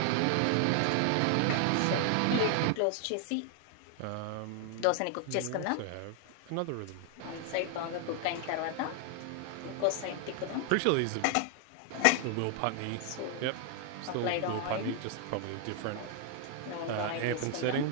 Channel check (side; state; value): both; different; correlation 0.00